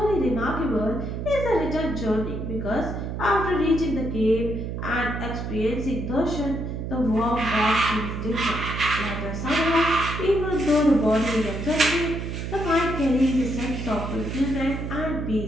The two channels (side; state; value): right; noise; hum, 5 dB below the sound